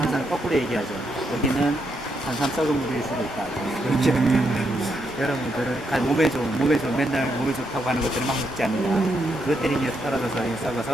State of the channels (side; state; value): both; normal; correlation 0.79